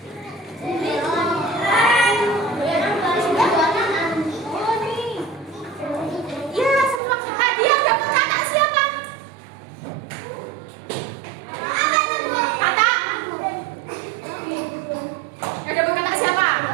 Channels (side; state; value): left; drops out; at 7.0 s